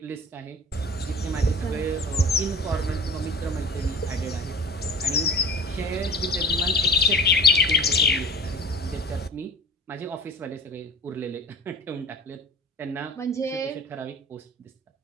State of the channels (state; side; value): normal; both; correlation 0.38